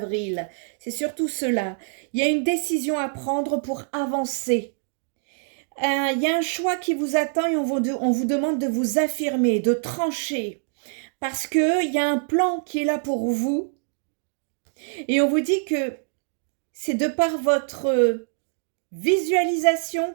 C'est surtout cela. Il y a une décision à prendre pour avancer. Il y a un choix qui vous attend et on vous demande de vous affirmer, de trancher. Parce qu'il y a un plan qui est là pour vous. Et on vous dit que c'est de par votre visualisation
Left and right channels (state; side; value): silent; left; digital silence